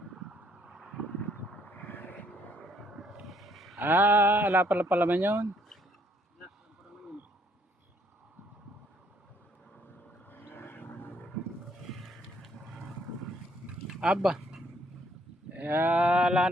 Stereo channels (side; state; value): both; normal; correlation 0.67